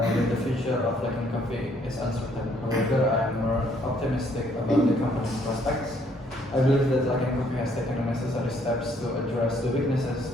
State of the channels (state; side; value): normal; both; correlation 0.66